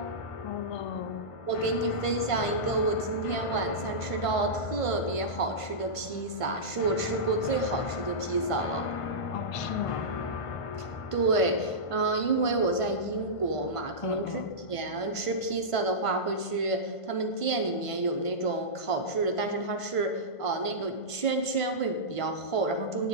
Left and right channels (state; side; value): late; right; 1.5 ms